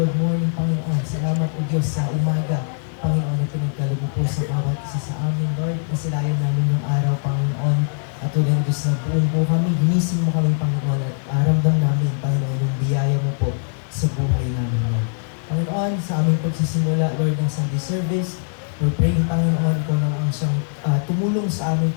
morning, Panginoon. Salamat o Diyos sa umaga, Panginoon, na pinagkalubo po sa bawat isa sa amin, Lord. Nasilayan namin yung araw, Panginoon. At tulad ng Diyos na buong po kami, ginising mo kami, Panginoon, at aramdam namin, Panginoon, yung biyaya mo po sa buhay namin, Lord. Panginoon, sa aming pagsisimula, Lord, ng Sunday service, we're praying, Panginoon, ikaw na ang siyang tumulong sa aming,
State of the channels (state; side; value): silent; right; digital silence